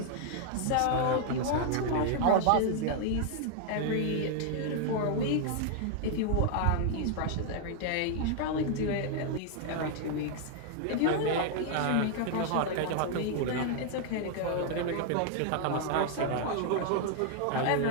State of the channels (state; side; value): different; both; correlation 0.00